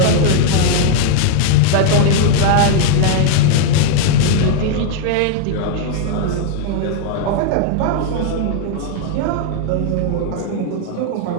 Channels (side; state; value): both; different; correlation 0.00